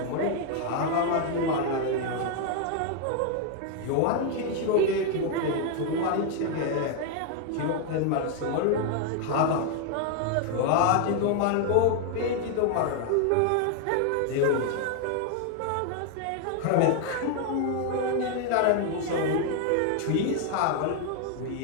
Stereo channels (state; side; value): different; both; correlation 0.00